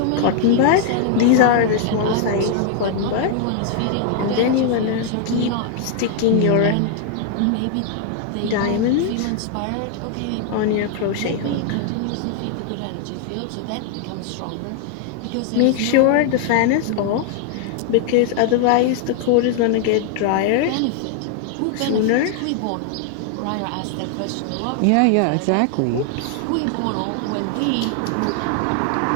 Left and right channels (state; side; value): different; both; correlation 0.00